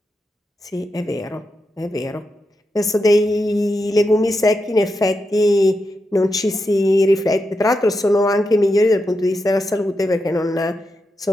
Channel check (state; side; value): normal; both; correlation 0.86